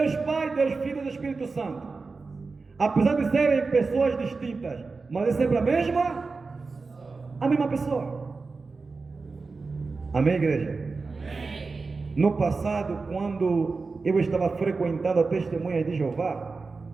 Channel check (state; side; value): quieter; left; 4.2 dB